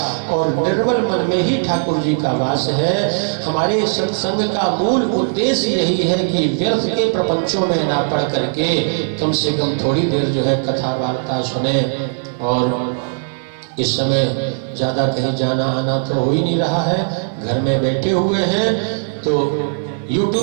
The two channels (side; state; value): left; silent; 57 dB below the other